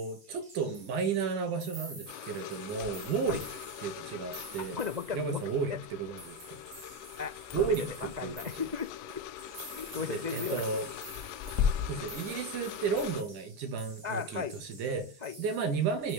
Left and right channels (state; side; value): late; left; 2.0 ms